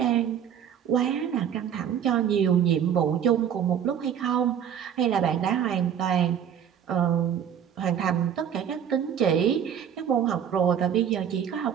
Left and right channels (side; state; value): left; quieter; 8.8 dB